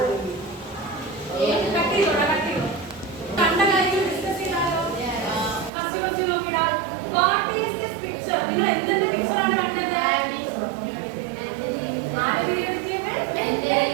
കണ്ട കാര്യം ഡിസ്കസ് ചെയ്താലോ? ഫസ്റ്റ് ക്വസ്റ്റ്യൻ നോക്കിടാ. What is this picture? നിങ്ങൾ എന്തിന്റെ പിക്ചർ ആണ് കണ്ടത്? ആരുടെ പീരിയോഡിക് ടേബിൾ?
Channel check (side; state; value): left; drops out; at 5.7 s